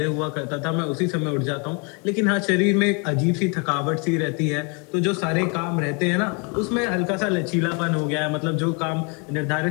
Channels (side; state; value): right; quieter; 33.4 dB